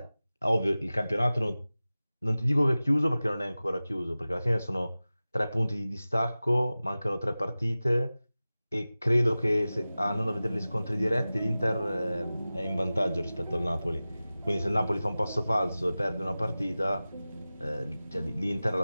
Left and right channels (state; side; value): inverted; both; correlation -0.97